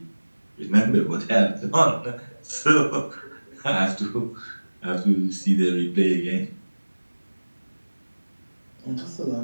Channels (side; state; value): both; inverted; correlation -1.00